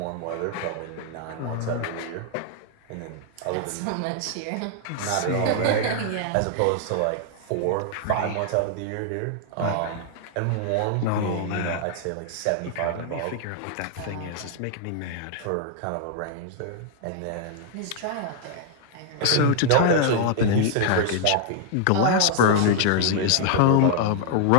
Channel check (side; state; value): both; different; correlation -0.01